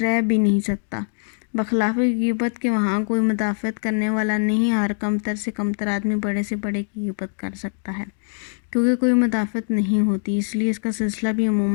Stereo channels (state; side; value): silent; right; digital silence